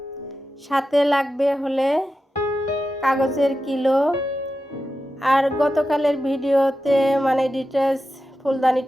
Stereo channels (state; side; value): normal; both; correlation 0.91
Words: সাথে লাগবে হলে কাগজের কিলো। আর গতকালের ভিডিওতে মানে ডিটেলস